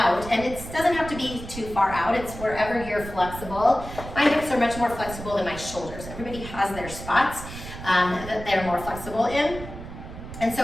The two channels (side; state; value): right; noise; rumble, 11 dB below the sound